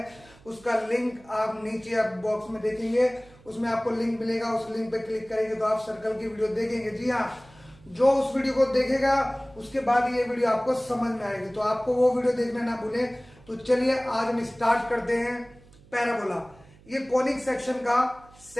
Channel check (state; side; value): noise; right; hum, 25 dB below the sound